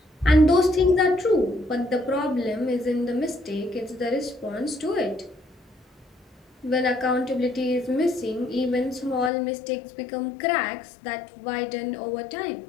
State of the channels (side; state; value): right; drops out; at 9.3 s